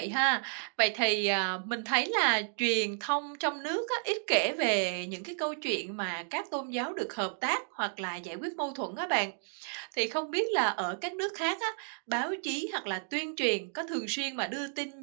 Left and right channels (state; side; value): silent; left; 56 dB below the other